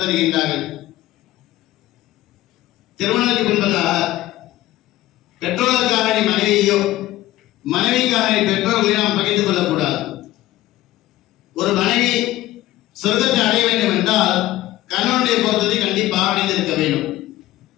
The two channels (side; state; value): right; quieter; 15.9 dB